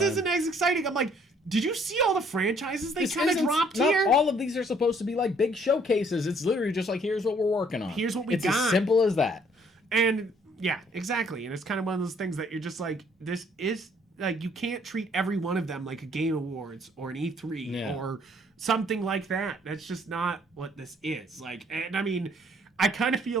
time. isn't as exciting. I'm like, did you see all the franchises they kind of dropped here? All of these are supposed to be like big showcases. It's literally just like, here's what we're working on. Here's what we got. It's as simple as that. And, yeah, exactly. And it's kind of one of those things that you're just like, this is... Like, you can't treat every one of them like a Game Awards or an E3 or something like that. That's just not what this is. Like, and I mean, I kind of feel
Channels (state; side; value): normal; both; correlation 0.62